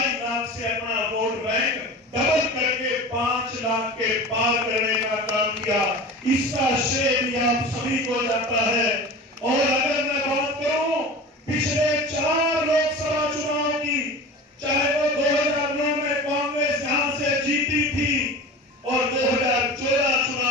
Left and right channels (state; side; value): normal; both; correlation 0.34